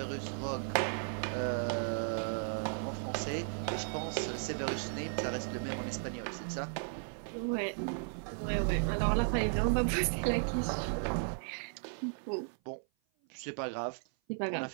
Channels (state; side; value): silent; left; 54 dB below the other